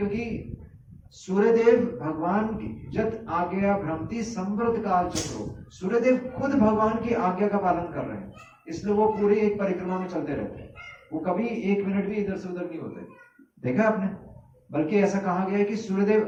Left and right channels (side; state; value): both; identical; correlation 1.00